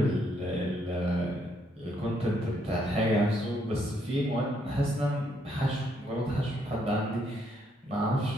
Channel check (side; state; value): both; normal; correlation 0.73